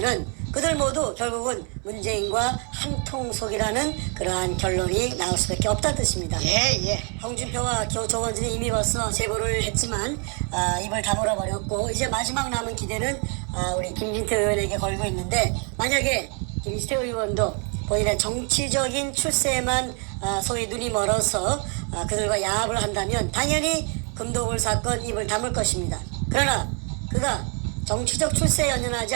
그들 모두 결국은 문재인과 한통속이라는 그러한 결론이 나올 수밖에 없다는 뜻입니다. 예. 홍준표와 조원진이 이미 벌써 제보를 했지만 입을 다물어 버렸고 이제 마지막 남은 기대는 우리 김진태 의원에게 걸고 있는데 만약에 김진태 의원도 본인의 정치적인 출세에만 소위 눈이 멀어서 그들과 야합을 한다면 당연히 금도굴 사건 입을 다물 것입니다. 그러나 그가 정치적 출세에 연연하지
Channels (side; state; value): left; quieter; 37.7 dB